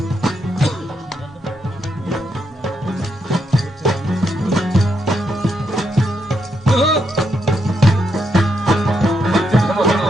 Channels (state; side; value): normal; both; correlation 0.80